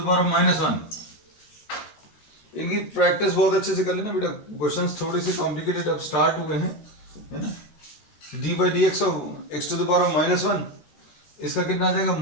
power of -1। इनकी प्रैक्टिस बहुत अच्छे से कर लेना बेटा, क्वेश्चंस थोड़े से कॉम्प्लिकेटेड अब स्टार्ट हुए हैं, है ना। D by d x of x to the power of -1, इसका कितना आ जाएगा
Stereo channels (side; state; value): right; late; 13 ms